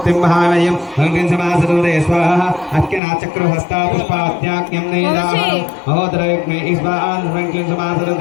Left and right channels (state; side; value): drops out; right; at 3.0 s